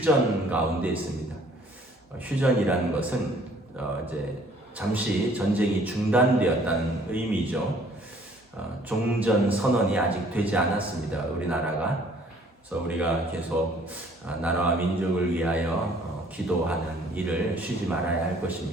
가운데 있습니다. 휴전이라는 것은 이제 잠시 전쟁이 중단되었다는 의미죠. 종전 선언이 아직 되지 않았습니다. 우리나라가. 그래서 우리가 계속 나라와 민족을 위하여 기도하는 일을 쉬지 말아야 할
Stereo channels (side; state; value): both; normal; correlation 0.57